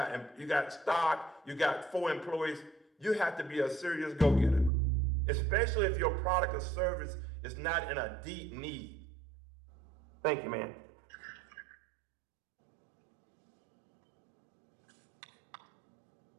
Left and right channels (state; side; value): drops out; left; at 4.7 s